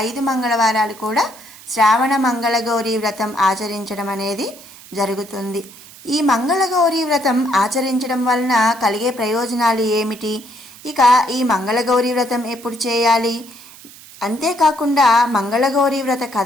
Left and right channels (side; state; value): right; noise; hiss, 20 dB below the sound